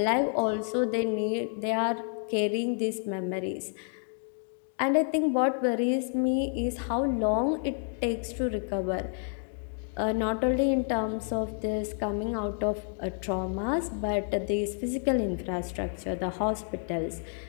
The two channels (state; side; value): silent; right; 58 dB below the other